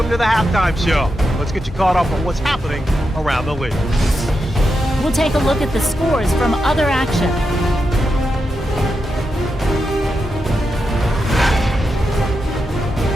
to the halftime show. Let's get you caught up on what's happening around the league. We'll take a look at the scores from other action.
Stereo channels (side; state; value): both; normal; correlation 0.87